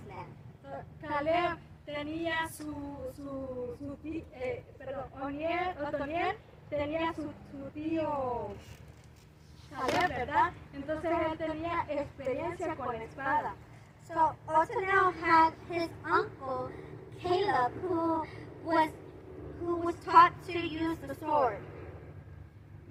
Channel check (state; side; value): identical; both; correlation 1.00